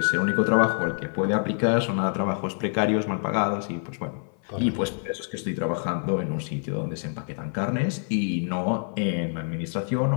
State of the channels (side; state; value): right; silent; 56 dB below the other